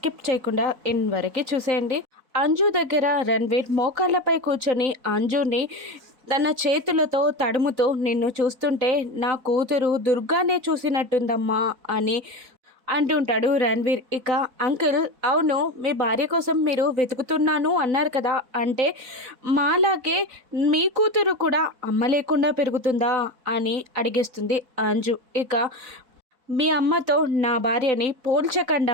చేయకుండా ఎండ్ వరకు చూసేయండి. అంజు దగ్గర రణ్వీర్ మోకాళ్ళపై కూర్చొని అంజుని తన చేతులతో తడుముతూ, నిన్ను చూస్తుంటే నా కూతురు దుర్గానే చూసినట్టుందమ్మా అని అంటుంటాడు రణ్వీర్. ఇక అంకుల్, అవును మీ భార్య కోసం మీరు వెతుకుతున్నాను అన్నారు కదా, అంటే మాలాగే మీ కూతురు కూడా అమ్మ లేకుండా పెరుగుతుందా అని అడిగేస్తుంది అంజు. ఇక మీ అమ్మతో నా భార్యని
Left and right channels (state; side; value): late; left; 4.1 ms